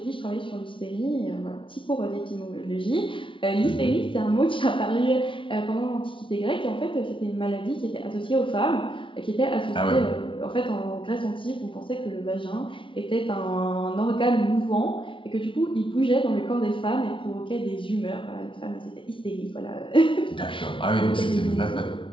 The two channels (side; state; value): right; late; 0.25 ms